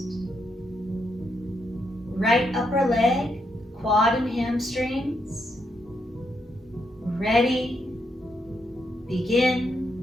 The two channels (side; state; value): both; normal; correlation 0.79